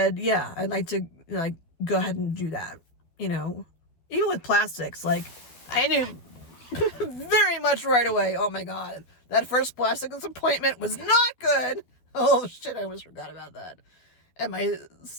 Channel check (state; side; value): late; right; 12 ms